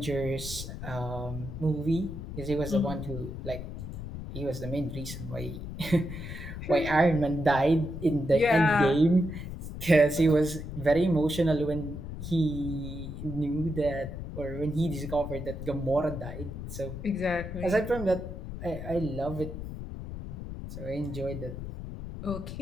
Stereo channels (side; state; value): left; noise; rumble, 8 dB below the sound